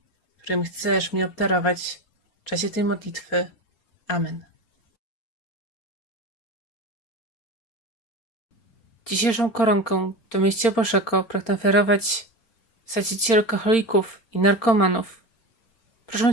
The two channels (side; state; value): right; late; 4.4 ms